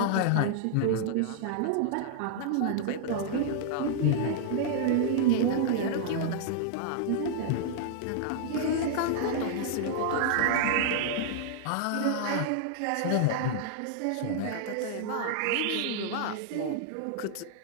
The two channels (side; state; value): both; different; correlation -0.01